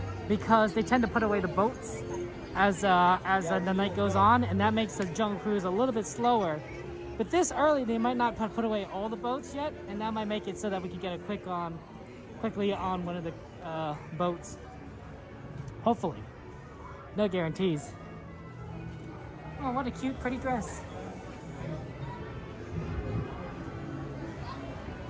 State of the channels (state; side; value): identical; both; correlation 1.00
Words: because they tend to put away the boats as the night goes on, and that makes the Jungle Cruise a little bit slower. But this early, they might not put away all the boats yet, and that might make it so that we can get a quickly on one of the boats. Hopefully. No guarantees. Oh, what a cute, pretty dress.